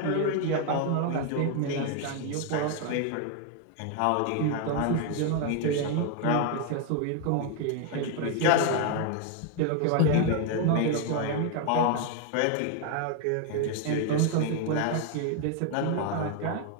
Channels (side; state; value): both; different; correlation 0.00